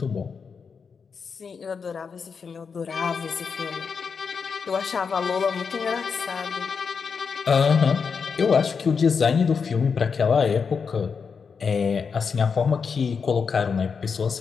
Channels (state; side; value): quieter; right; 5.8 dB